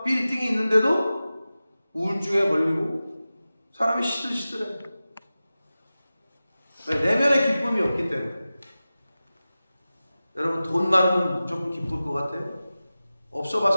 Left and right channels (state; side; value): inverted; both; correlation -0.96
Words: 빌딩이 있는데도 우울증에 걸리고 사람이 시들시들해. 왜? 내면에 기쁨이 없기 때문에. 여러분 돈 많으면 무조건 기쁠 것 같아요? 없어